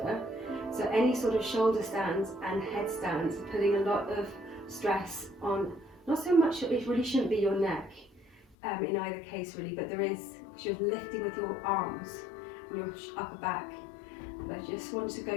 So any sort of shoulder stands and headstands are putting a lot of stress on, not so much, it really shouldn't be your neck in either case really, but there is, because you're lifting with your arms and your upper back. But I just want to go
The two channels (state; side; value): drops out; right; at 8.6 s